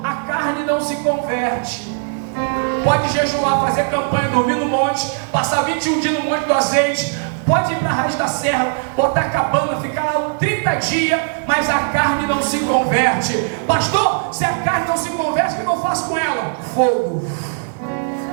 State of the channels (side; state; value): left; silent; 67 dB below the other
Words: A carne não se converte. Pode jejuar, fazer campanha, dormir no monte, passar 21 dias no monte do azeite, pode ir para a Raiz da Serra, botar cabana, ficar lá 30 dias, mas a carne não se converte. Pastor, se a carne não se converte, o que eu faço com ela? Fogo.